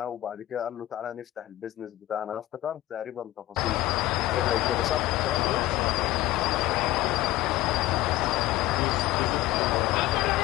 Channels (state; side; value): quieter; right; 16.4 dB